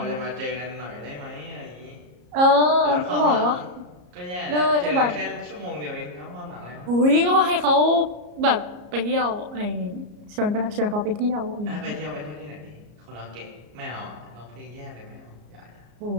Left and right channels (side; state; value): left; late; 34 ms